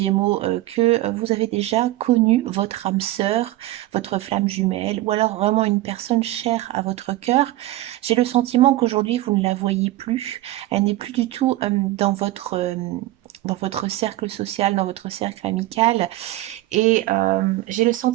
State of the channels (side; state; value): left; quieter; 16.6 dB